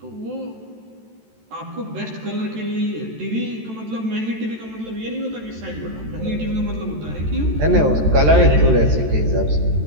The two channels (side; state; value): left; late; 13 ms